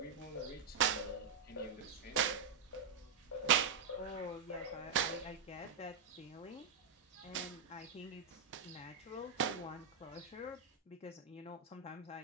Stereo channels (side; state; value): left; quieter; 6.0 dB